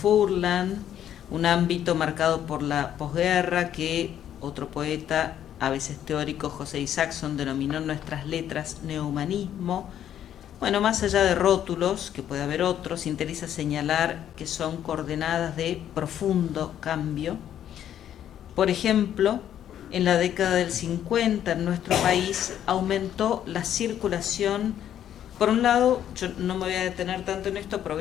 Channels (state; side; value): quieter; right; 10.5 dB